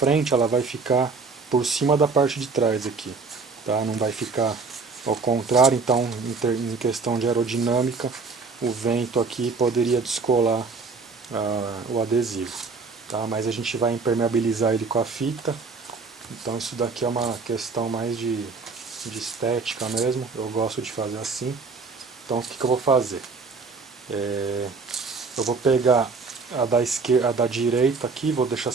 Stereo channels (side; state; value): left; quieter; 4.4 dB